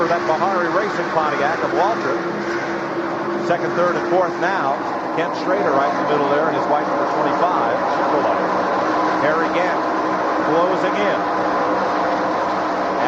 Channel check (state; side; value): identical; both; correlation 1.00